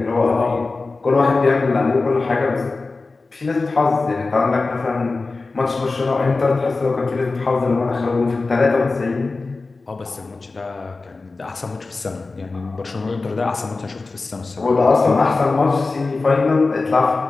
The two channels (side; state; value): right; quieter; 3.7 dB